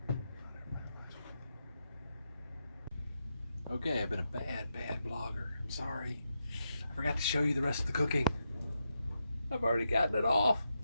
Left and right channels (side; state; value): both; inverted; correlation -0.85